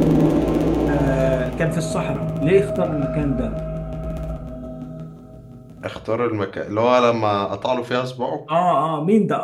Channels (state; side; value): identical; both; correlation 1.00